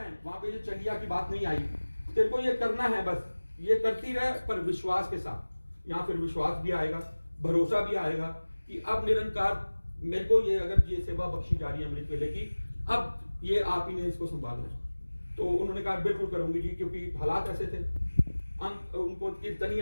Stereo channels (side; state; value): both; inverted; correlation -1.00